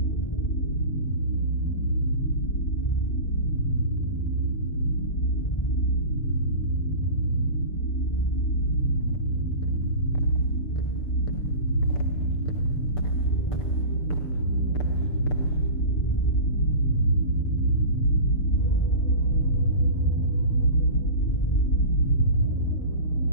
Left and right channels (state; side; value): late; right; 6.8 ms